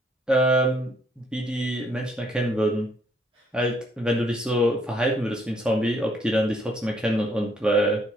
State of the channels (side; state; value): both; normal; correlation 0.67